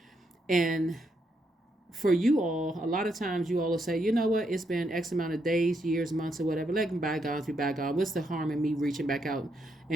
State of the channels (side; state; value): both; normal; correlation 0.78